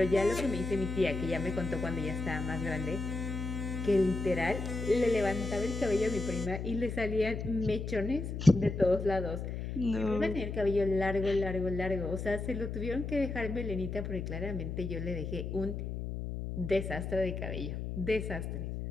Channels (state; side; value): noise; left; hum, 5 dB below the sound